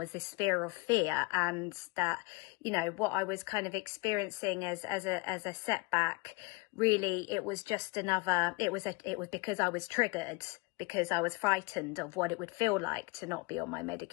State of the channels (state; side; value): quieter; right; 25.5 dB